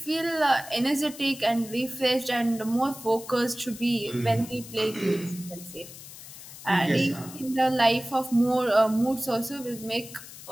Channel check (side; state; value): left; noise; hiss, 15 dB below the sound